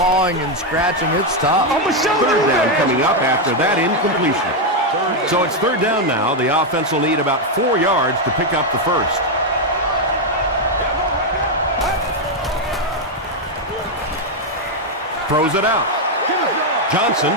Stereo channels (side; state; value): both; normal; correlation 0.03